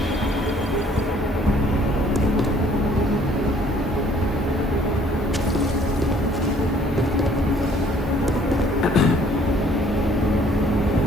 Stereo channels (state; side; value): normal; both; correlation 0.59